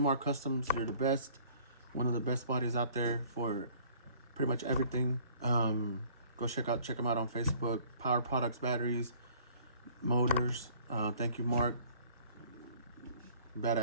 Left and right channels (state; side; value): inverted; both; correlation -0.55